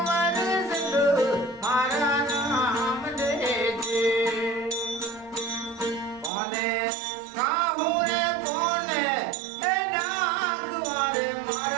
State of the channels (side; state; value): left; drops out; at 6.3 s